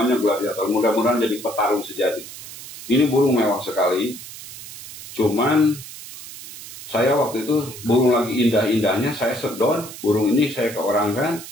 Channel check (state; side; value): noise; right; hiss, 14 dB below the sound